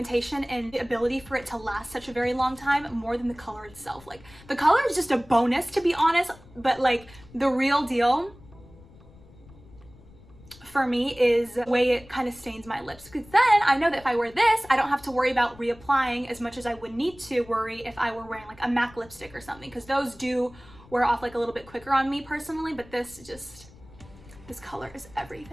and the ability for it to last such a very long time more than the color itself. Like, the color is just a bonus, to be honest, but like the real deal for me is the way it kind of stains my lips, because then I know that if I wear this, I don't have to worry about reapplying as much as I would need to worry if I were wearing like a MAC lipstick or something, because those do wear off like a little bit quicker on me personally, but this color is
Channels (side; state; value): left; noise; rumble, 22 dB below the sound